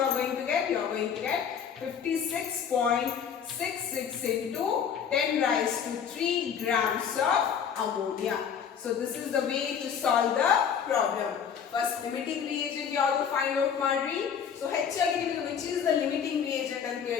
are going to get? You are going to get 56.66 into 10 raised to 3 grams of ammonia. So this is the way to solve the problem. First limiting reagent you have to find out ಮಾಡ್ರಿ. So ಹೆಚ್ಚಾಗಿ ನಿಮಗೆ which is the limiting reagent ಅಂತ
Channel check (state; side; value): quieter; right; 7.6 dB